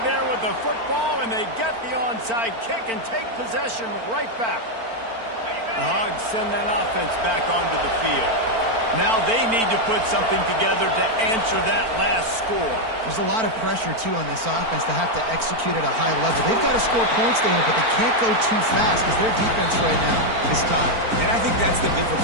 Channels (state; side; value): late; left; 4.4 ms